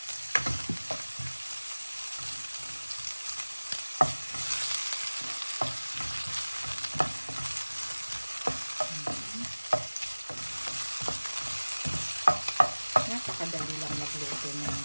Napakadali lang magluto ng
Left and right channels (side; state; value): both; inverted; correlation -1.00